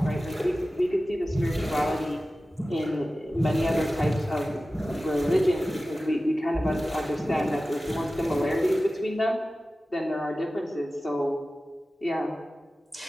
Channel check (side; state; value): both; normal; correlation 0.96